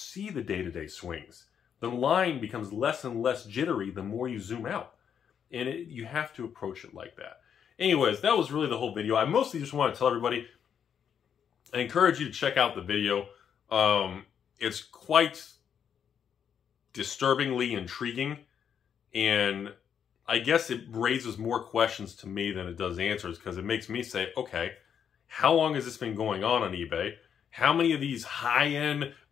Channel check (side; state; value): right; quieter; 8.0 dB